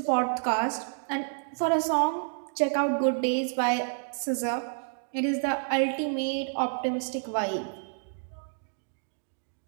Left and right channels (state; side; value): silent; left; digital silence